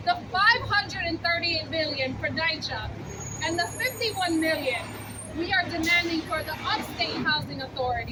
The $538 million for NYCHA and the $51 million we are demanding for the upstate housing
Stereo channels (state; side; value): identical; both; correlation 1.00